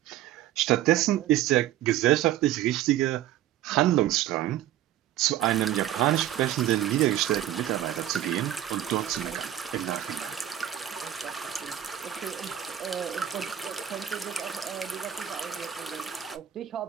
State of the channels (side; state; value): left; quieter; 12.2 dB